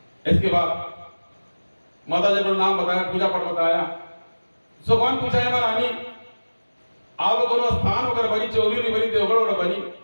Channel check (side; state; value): both; inverted; correlation -1.00